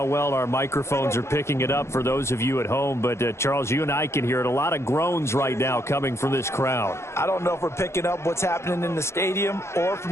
well our microphones are picking it up for those of you at home, but Charles, you and I can hear it. A lot of groans right now coming from this crowd. I don't know if we're picking up what's happening in the stadium or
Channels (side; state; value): right; late; 0.13 ms